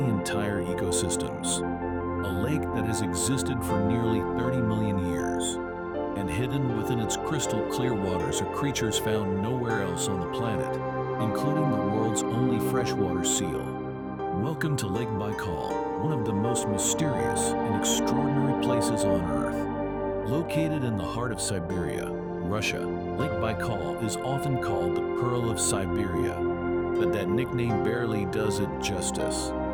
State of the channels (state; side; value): identical; both; correlation 1.00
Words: entire ecosystems. A lake that has existed for nearly 30 million years. And hidden within its crystal clear waters are creatures found nowhere else on the planet, including the world's only freshwater seal. Welcome to Lake Baikal, one of the most mysterious and extraordinary places on Earth. Located in the heart of Siberia, Russia, Lake Baikal is often called the Pearl of Siberia, but that nickname barely does it justice.